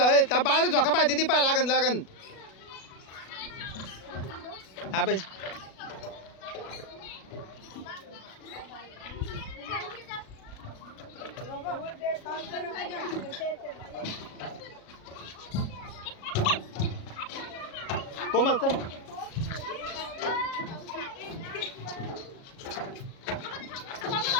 त्या बाळा झोका पाहिजे ती पाय लागन लागन. हा बाई कोमल चल.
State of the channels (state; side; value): late; right; 37 ms